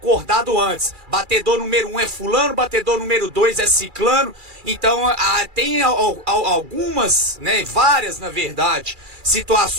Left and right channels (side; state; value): left; late; 2.4 ms